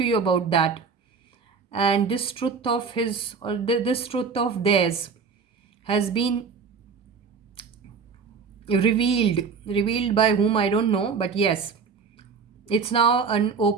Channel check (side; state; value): left; quieter; 5.5 dB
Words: you about that. And this truth of his, or this truth of theirs, has been revealed by whom I don't know, but yes, it's now an